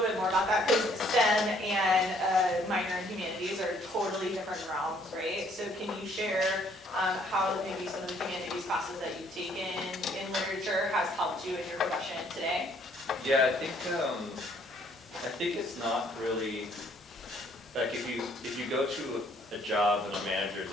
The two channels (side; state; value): both; normal; correlation 0.64